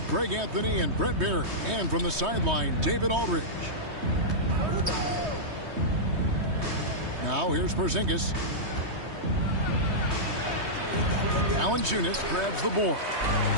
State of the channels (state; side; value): late; left; 3.2 ms